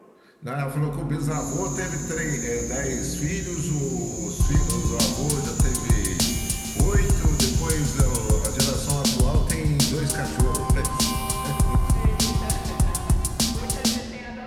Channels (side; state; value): both; identical; correlation 1.00